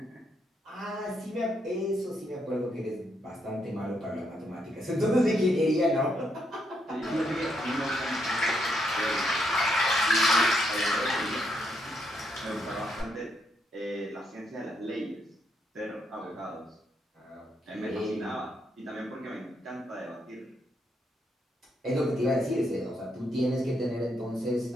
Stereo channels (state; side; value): normal; both; correlation 0.77